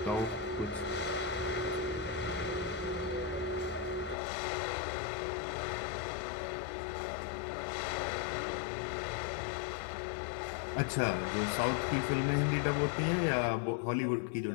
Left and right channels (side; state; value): right; drops out; at 4.2 s